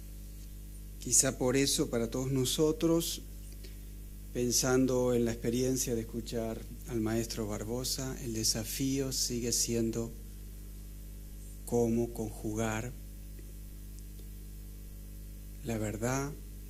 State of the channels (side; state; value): both; identical; correlation 1.00